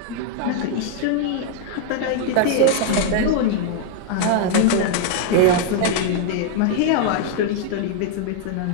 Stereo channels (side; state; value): both; different; correlation 0.00